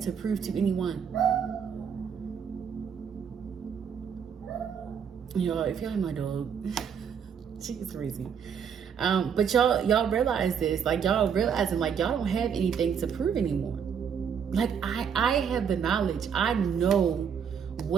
prove to anyone. Y'all, if y'all have my dog, she's crazy. But y'all realize this, like y'all realizing like y'all don't have anything to prove anymore. Like I have the knowledge. I know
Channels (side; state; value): left; quieter; 7.4 dB